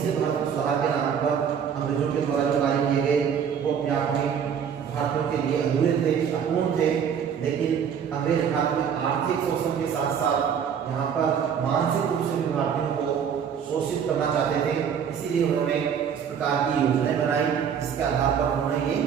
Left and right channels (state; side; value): quieter; left; 7.7 dB